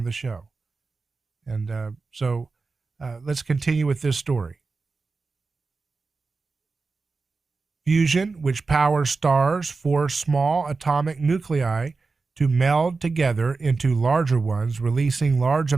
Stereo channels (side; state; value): left; quieter; 4.2 dB